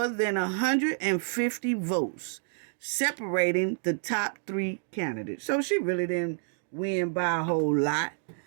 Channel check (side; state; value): left; silent; digital silence